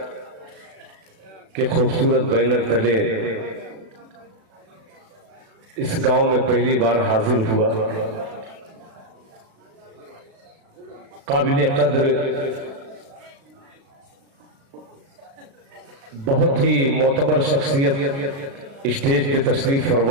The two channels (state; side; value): late; left; 36 ms